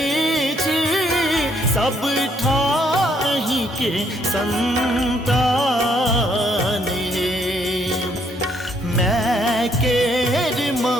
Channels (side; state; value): both; normal; correlation 0.70